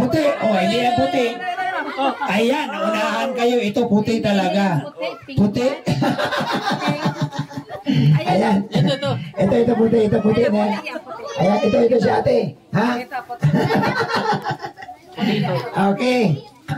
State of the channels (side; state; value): both; identical; correlation 1.00